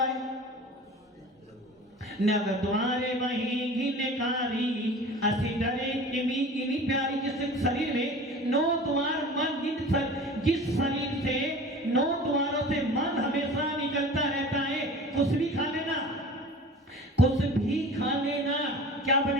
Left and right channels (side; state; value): both; normal; correlation 0.40